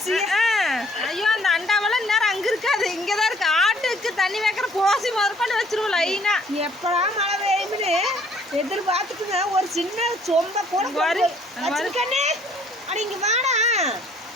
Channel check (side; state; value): both; normal; correlation 0.60